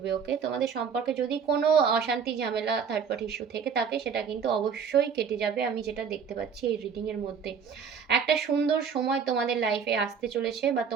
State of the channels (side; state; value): left; quieter; 6.5 dB